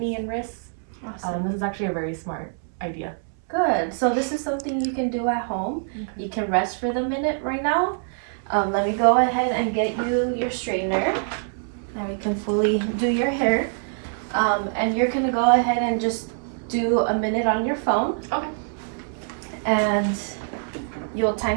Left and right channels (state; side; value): silent; left; 62 dB below the other